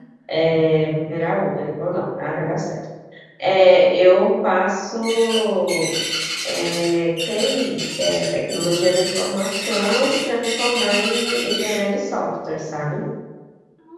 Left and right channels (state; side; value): identical; both; correlation 1.00